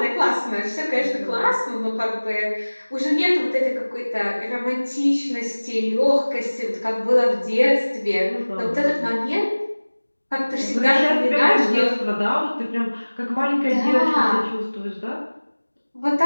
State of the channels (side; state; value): both; inverted; correlation -1.00